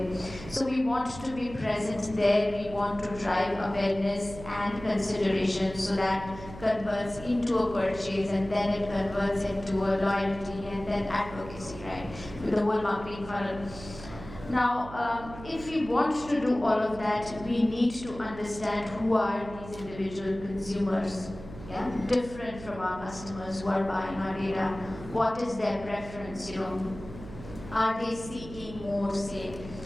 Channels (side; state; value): right; noise; hum, 14 dB below the sound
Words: So we want to be present there, we want to drive awareness and consideration so that converts into a purchase, and then it converts into a loyalty and then advocacy, right? With the whole marketing funnel. Now, if we want to do all of that, we need to understand who are these individual consumers. Yeah, different from our customers who are buying our data. What is their preference? Are they seeking more, say,